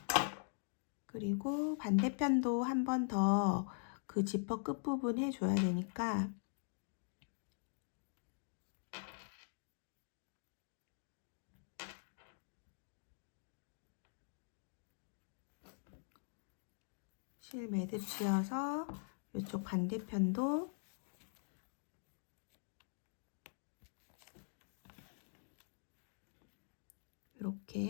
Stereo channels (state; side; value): silent; right; digital silence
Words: 그리고 반대편도 한 번 더 그 지퍼 끝부분 해줘야 되니까 실 매듭 지어서 이쪽 반대편도